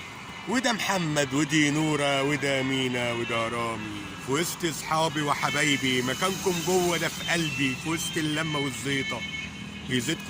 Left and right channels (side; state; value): both; identical; correlation 1.00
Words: وده محمد ودي نورة وده مينا وده رامي في وسط اصحابي وحبايبي مكانكم جوه ده في قلبي في وسط اللمة والزيطة